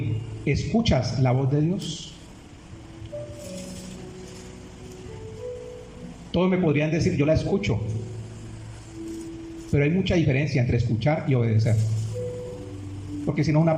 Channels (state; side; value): identical; both; correlation 1.00